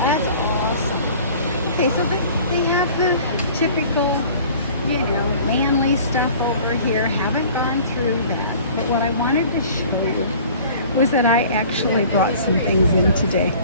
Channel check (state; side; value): inverted; both; correlation -0.47